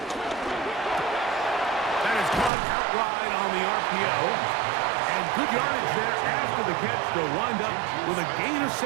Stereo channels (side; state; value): left; drops out; at 2.5 s